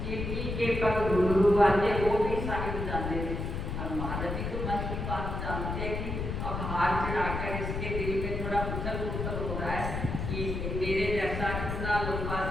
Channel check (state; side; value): noise; left; rumble, 3 dB below the sound